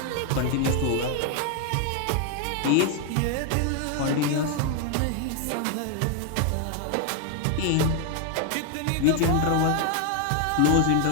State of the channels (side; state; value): both; different; correlation 0.01